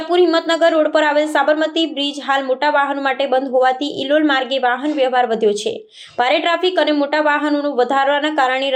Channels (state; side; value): identical; both; correlation 1.00